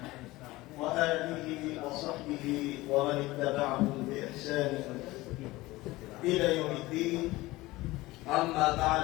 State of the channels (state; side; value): quieter; right; 19.4 dB